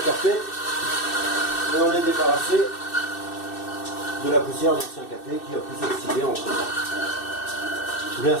cafés, et on est débarrassé de la poussière d'anciens cafés qui a pu s'oxyder en temps. Bien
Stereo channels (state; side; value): late; right; 2.6 ms